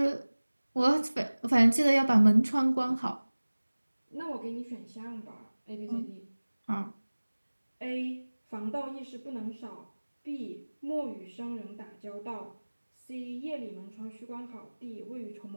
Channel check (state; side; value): inverted; both; correlation -1.00